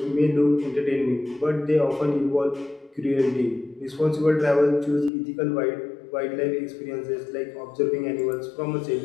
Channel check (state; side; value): drops out; right; at 5.1 s